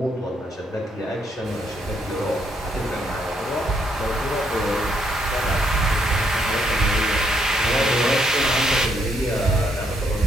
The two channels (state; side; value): normal; both; correlation 0.73